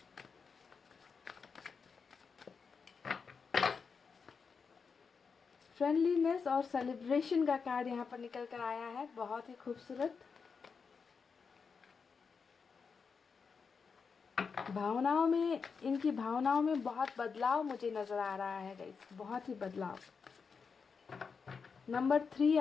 फ्रेंडलीनेस और सेलिब्रेशन का कार्ड यहाँ पर निकल कर आया है, बहुत ही खूबसूरत। भावनाओं में, इनकी भावनाओं में बहुत बदलाव मुझे नज़र आ रहा है गाइस, बहुत ही बदलाव। नंबर 3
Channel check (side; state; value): right; quieter; 5.5 dB